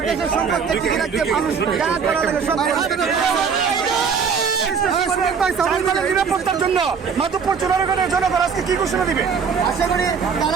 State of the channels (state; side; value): quieter; left; 6.1 dB